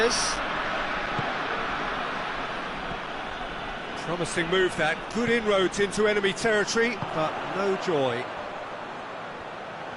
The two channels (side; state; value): both; identical; correlation 1.00